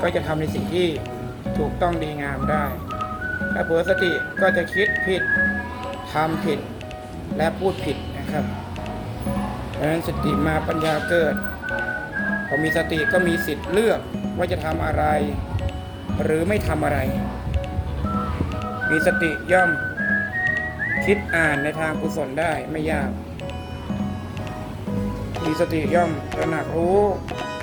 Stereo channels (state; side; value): identical; both; correlation 1.00